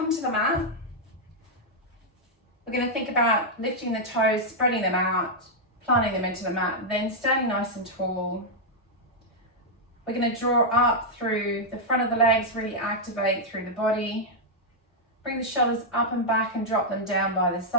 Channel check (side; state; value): both; normal; correlation -0.04